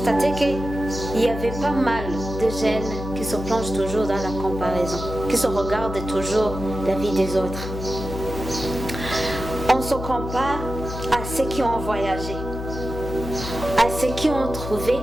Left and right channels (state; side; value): noise; left; hum, 7 dB below the sound